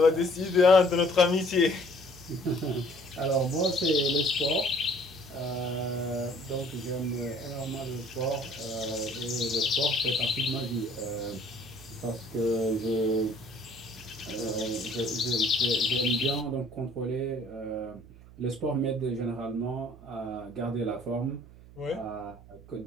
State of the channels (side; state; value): right; noise; hum, 20 dB below the sound